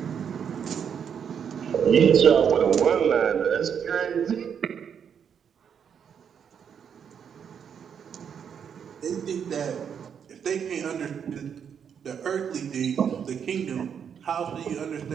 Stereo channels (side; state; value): left; quieter; 7.7 dB